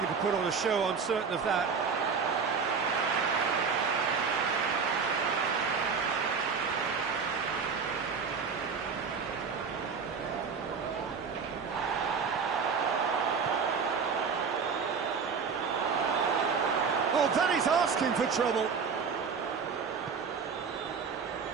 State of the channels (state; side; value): quieter; left; 5.7 dB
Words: to put on a show, I'm certain of that. Oh, that is asking for trouble.